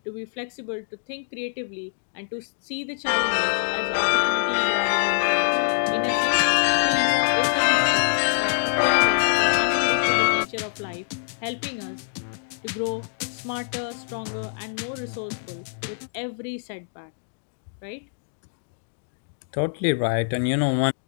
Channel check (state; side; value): silent; right; digital silence